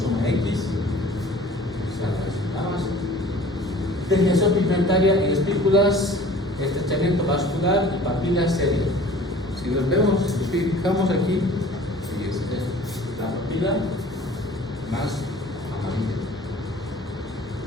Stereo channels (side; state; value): both; normal; correlation 0.47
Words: X. Degeneración pigmentaria en espículas, estrechamiento vascular y papila seria. Si los vemos, nos fijamos aquí, y la papila más amarilla.